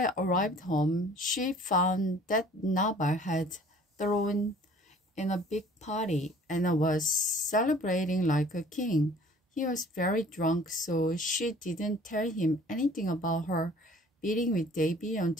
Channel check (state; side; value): normal; both; correlation 0.52